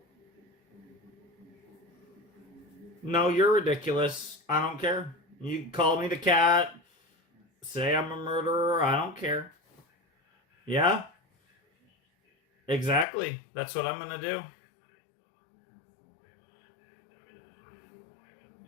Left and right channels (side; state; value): right; drops out; at 13.1 s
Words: No, you're ridiculous. I don't care. You call me the cat, say I'm a murderer. I don't care. Yeah, exactly. That's what I'm gonna do.